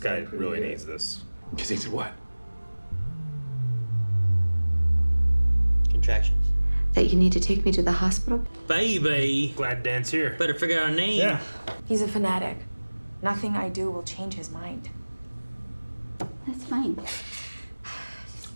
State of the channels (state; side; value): inverted; both; correlation -1.00